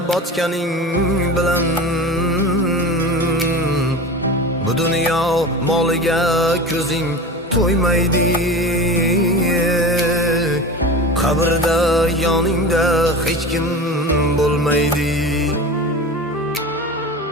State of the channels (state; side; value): normal; both; correlation 0.31